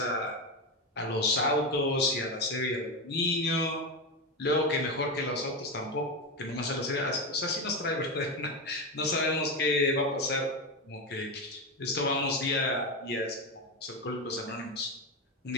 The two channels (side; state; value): both; normal; correlation 0.15